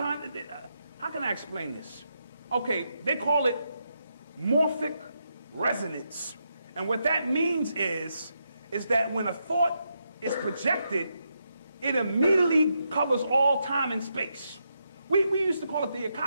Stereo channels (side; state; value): both; inverted; correlation -0.82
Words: can I explain this? Okay, they call it morphic resonance. And what that means is that when a thought is projected, it immediately covers all time and space. We used to call it the